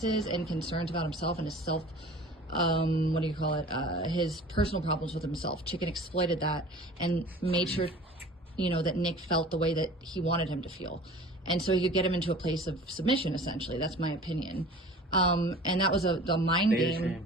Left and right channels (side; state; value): both; normal; correlation 0.43